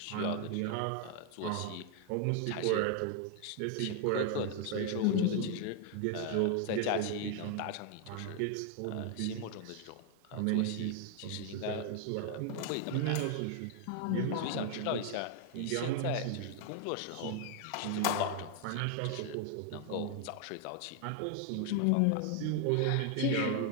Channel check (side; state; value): both; different; correlation 0.00